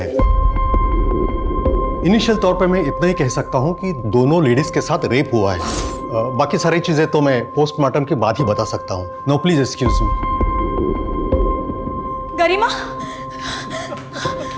इनिशियल तौर पे मैं इतना ही कह सकता हूँ कि दोनों लेडीज के साथ रेप हुआ है। बाकी सारी चीजें तो मैं पोस्टमार्टम के बाद ही बता सकता हूँ। No please excuse me. Garima,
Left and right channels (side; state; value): both; identical; correlation 1.00